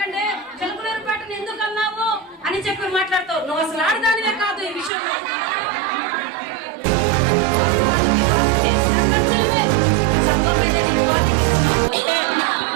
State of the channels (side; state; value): left; drops out; at 4.9 s